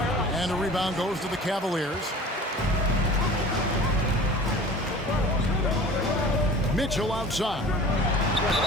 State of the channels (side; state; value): both; normal; correlation 0.42